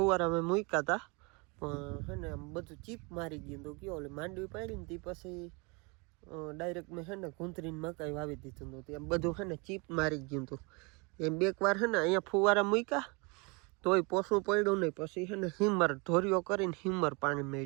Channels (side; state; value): left; quieter; 29.7 dB